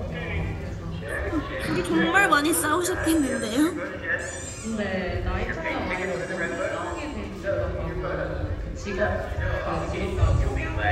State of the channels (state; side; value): identical; both; correlation 1.00